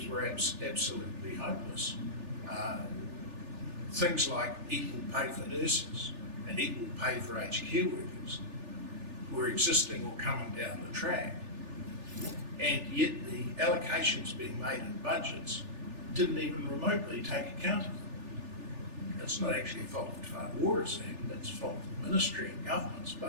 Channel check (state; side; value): late; left; 3.4 ms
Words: were absolutely hopeless. Things like equal pay for nurses and equal pay for aged care workers were existing or coming down the track. And yet the allocations being made in budgets didn't even remotely take account of them. That's not actually a fault of Te Whātuara's Act, that's a fault of the ministry and governments,